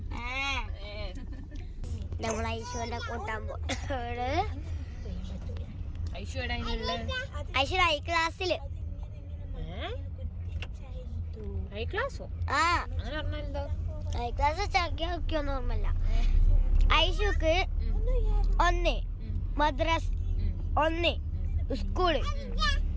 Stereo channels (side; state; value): both; identical; correlation 1.00